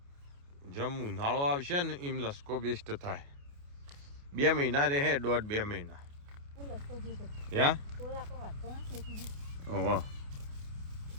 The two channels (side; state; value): left; late; 28 ms